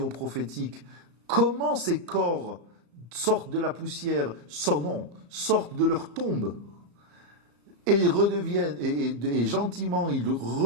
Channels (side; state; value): left; late; 34 ms